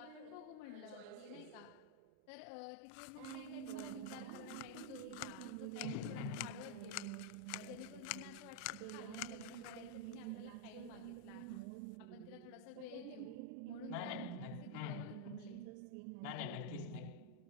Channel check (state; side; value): different; both; correlation 0.00